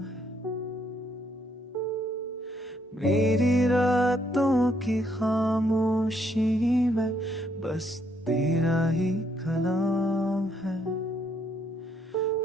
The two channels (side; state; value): both; normal; correlation 0.71